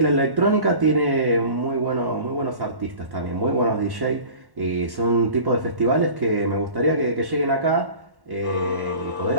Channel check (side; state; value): left; late; 1.1 ms